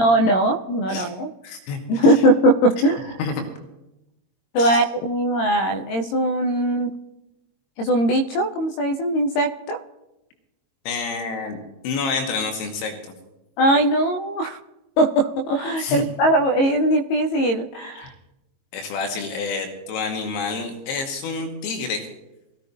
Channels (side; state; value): right; late; 22 ms